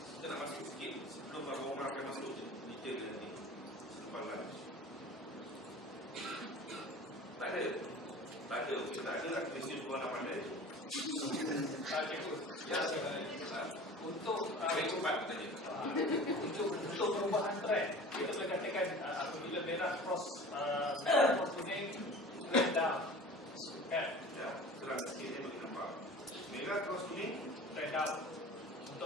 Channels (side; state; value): both; normal; correlation 0.41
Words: Kita nak masuk sikit sebelum Abang Omar akan masuk detail nanti selepas lunch. Tak ada. Okey, tak ada lah. Mesti orang nak pandai. Ya, untuk cepat tadi. untuk perubahan trend, kita boleh katakan apabila merah cross kuning, trend down. Kan? Ya, terang sikit dia bagi nampak. Merah cross kuning, Trend down.